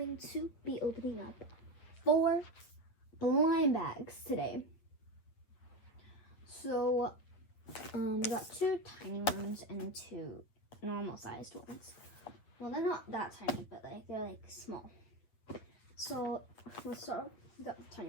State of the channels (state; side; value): late; right; 8.6 ms